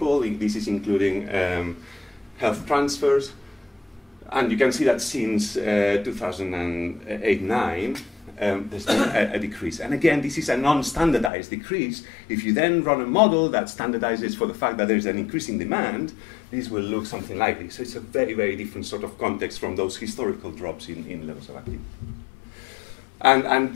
This is including health transfers. And you can see that since 2008-9, there's been a decrease. And again, this is a non-standardized decrease. If you then run a model that standardizes for the fact that there's an increase in demand, this will look something like this. So it's a very, very different sort of context from those historical drops in levels of activity. And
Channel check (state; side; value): drops out; right; at 11.3 s